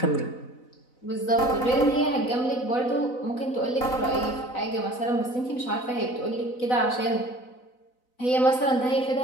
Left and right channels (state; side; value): late; right; 4.0 ms